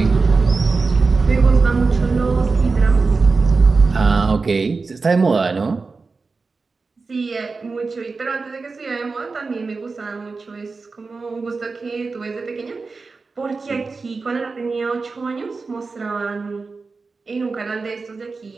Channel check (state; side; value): quieter; left; 4.2 dB